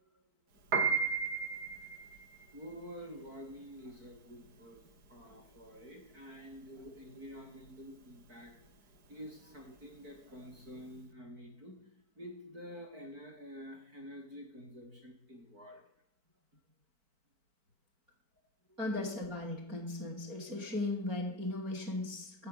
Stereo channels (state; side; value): late; left; 4.5 ms